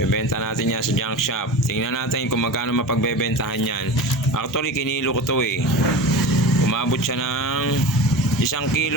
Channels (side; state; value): both; normal; correlation 0.31